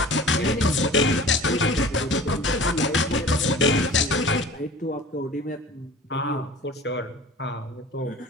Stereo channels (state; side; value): normal; both; correlation 0.41